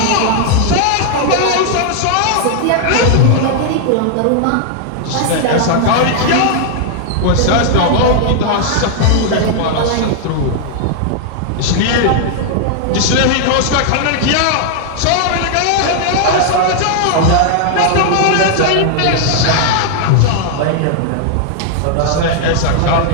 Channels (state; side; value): different; both; correlation 0.00